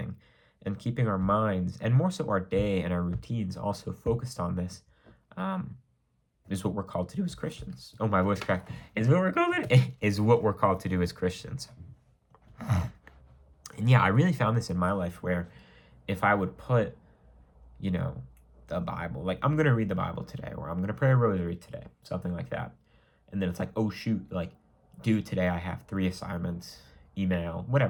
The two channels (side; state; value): both; identical; correlation 1.00